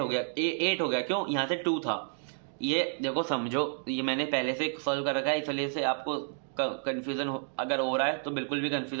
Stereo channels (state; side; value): silent; left; 57 dB below the other